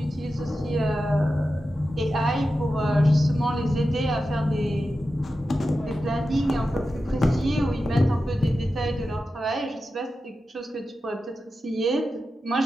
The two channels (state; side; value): normal; both; correlation 0.92